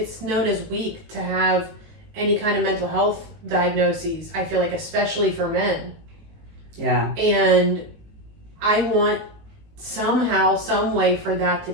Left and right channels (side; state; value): left; late; 19 ms